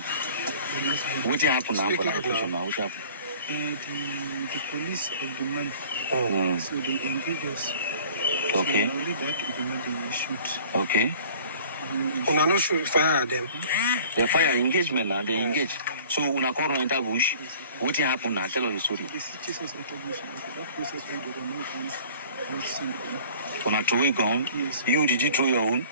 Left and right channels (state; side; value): inverted; both; correlation -0.48